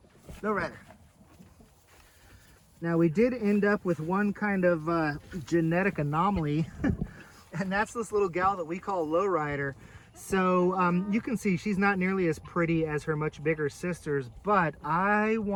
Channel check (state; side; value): identical; both; correlation 1.00